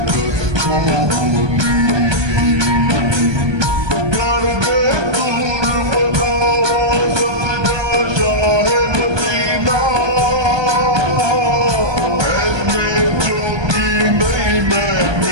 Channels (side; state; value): left; late; 1.2 ms